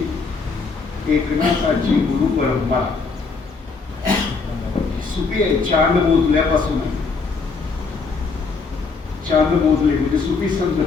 एकनाथाची गुरु परंपरा सुफी आहे. चांद मोजल्यापासून आहे. चांद मोजले म्हणजे सुफी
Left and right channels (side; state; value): right; quieter; 4.5 dB